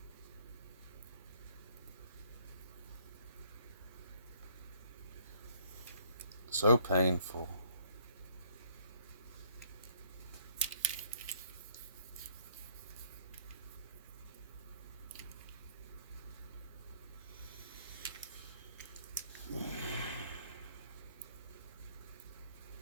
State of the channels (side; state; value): both; inverted; correlation -0.63